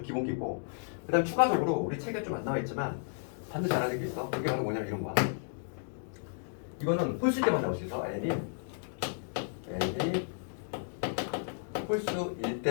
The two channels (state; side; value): silent; right; digital silence